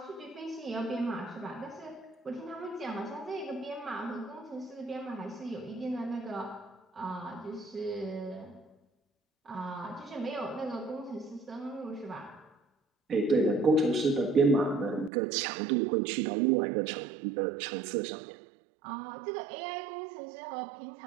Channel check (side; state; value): left; drops out; at 15.1 s